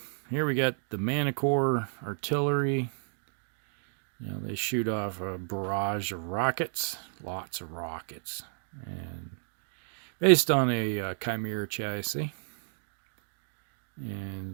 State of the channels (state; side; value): silent; left; 57 dB below the other